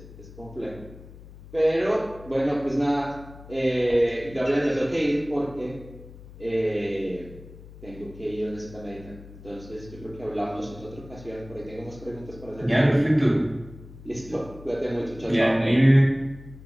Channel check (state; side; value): noise; left; hum, 18 dB below the sound